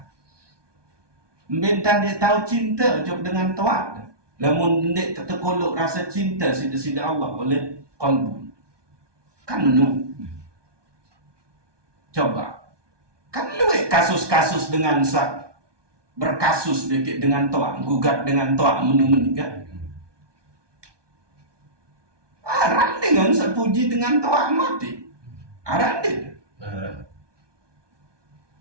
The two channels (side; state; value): left; late; 1.2 ms